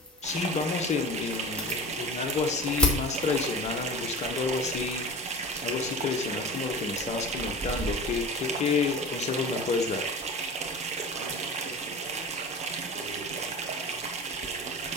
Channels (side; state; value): both; normal; correlation 0.34